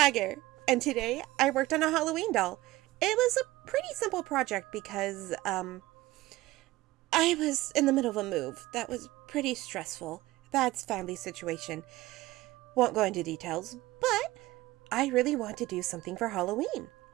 and today I worked on a Halloween doll. It was a pretty simple project because I was in the middle of a move that was pretty stressful. That's family situation. Won't go into details, but I really want to do something for Halloween.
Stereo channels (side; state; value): left; quieter; 18.3 dB